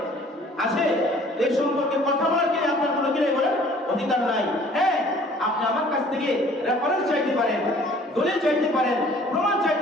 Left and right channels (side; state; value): both; normal; correlation 0.53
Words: আছে? এই সম্পর্কে কথা বলার কি আপনার কোনো কি নাই বলেন? অধিকার নাই। হ্যাঁ, আপনি আমার কাছ থেকে রেফারেন্স চাইতে পারেন, দলিল চাইতে পারেন, প্রমাণ